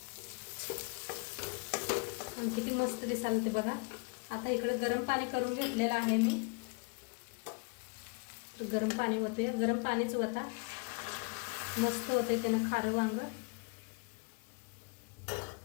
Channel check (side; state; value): right; quieter; 33.7 dB